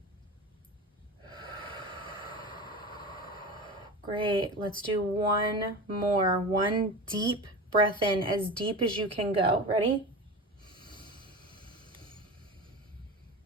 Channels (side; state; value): both; normal; correlation 0.29